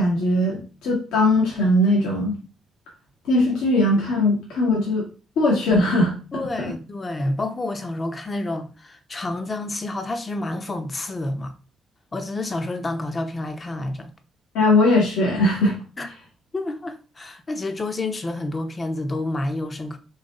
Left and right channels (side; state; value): both; normal; correlation 0.55